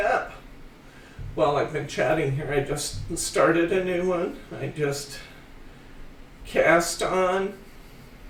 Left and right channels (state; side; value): identical; both; correlation 1.00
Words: up. While I've been chatting here, I just started a new one. I just cast on.